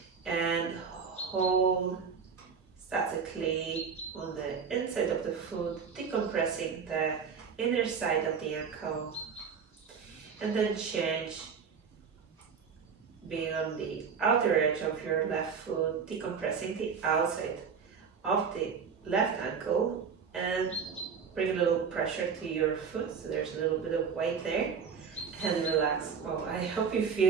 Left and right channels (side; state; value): left; quieter; 6.2 dB